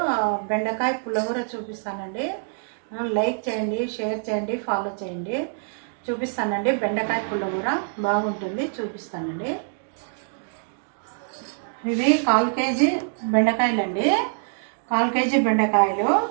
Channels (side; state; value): left; silent; digital silence